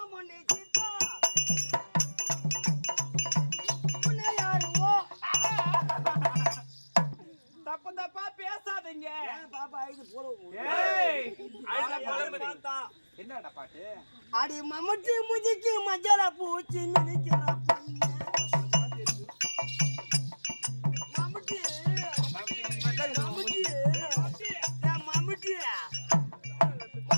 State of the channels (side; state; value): both; inverted; correlation -1.00